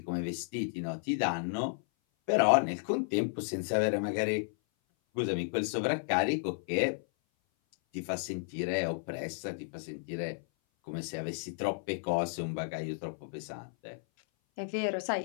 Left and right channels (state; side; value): silent; right; 56 dB below the other